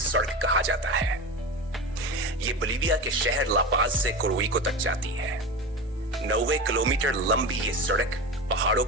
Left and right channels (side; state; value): both; normal; correlation 0.26